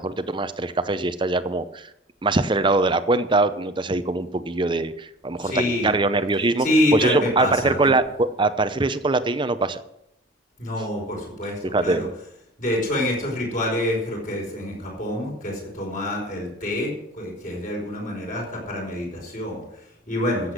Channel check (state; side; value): normal; both; correlation 0.41